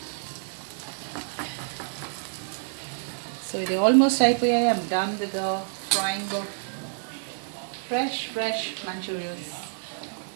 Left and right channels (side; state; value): left; silent; digital silence